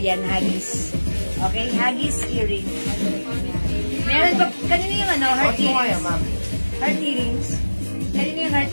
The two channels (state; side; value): inverted; both; correlation -1.00